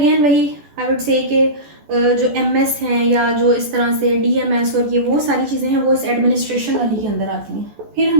वही आई वुड से कि जो MS हैं या जो इस तरह से DMS और ये वो सारी चीज़ें हैं वो इस एडमिनिस्ट्रेशन वाली के अंदर आती हैं। फिर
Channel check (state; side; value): late; left; 14 ms